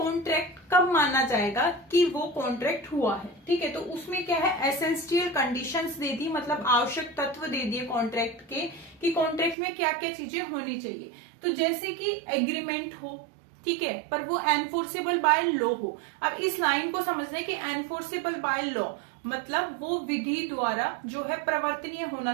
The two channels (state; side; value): drops out; left; at 9.6 s